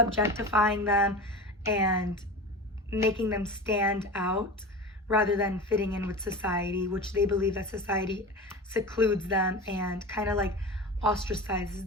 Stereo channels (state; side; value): normal; both; correlation 0.30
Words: them and making them stand out rather than fitting in with society, which they believe that society secludes them and kind of like ostracizes